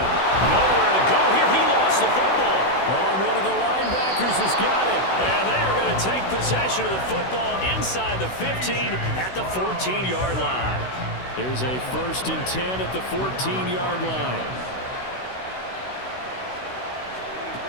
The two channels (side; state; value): right; late; 16 ms